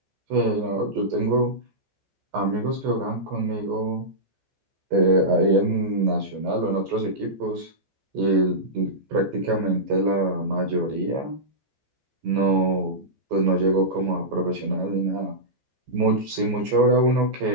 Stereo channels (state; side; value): late; left; 14 ms